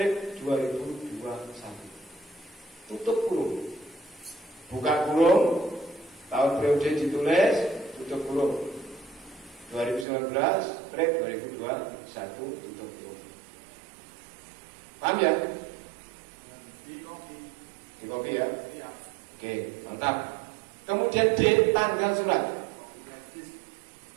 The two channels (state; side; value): drops out; left; at 10.1 s